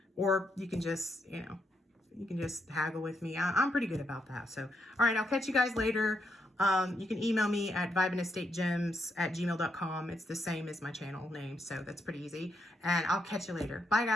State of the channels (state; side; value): normal; both; correlation 0.79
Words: Or you can just, you can just haggle with me. I'm pretty good about that. So, all right, I'll catch you guys later. You can email me at vibeandestategems@gmail.com. It's the same as my channel name, so that's pretty easy. And I'll catch you later. Bye,